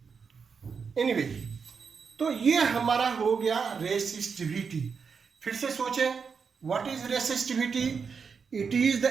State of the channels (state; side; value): quieter; left; 5.8 dB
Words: एनीवे, तो ये हमारा हो गया रेसिस्टिविटी। फिर से सोचें, what is resistivity? It is the